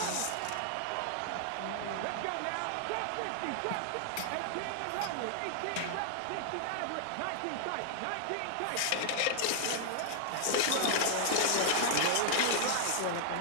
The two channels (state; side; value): different; both; correlation 0.00